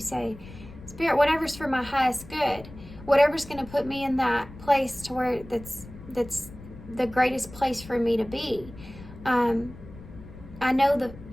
Spirit, whatever's for my highest good, whatever's going to put me in that place to where that's the greatest place for me to be. I know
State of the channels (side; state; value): left; noise; rumble, 17 dB below the sound